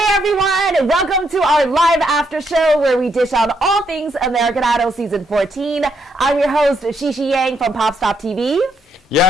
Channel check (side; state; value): both; normal; correlation 0.76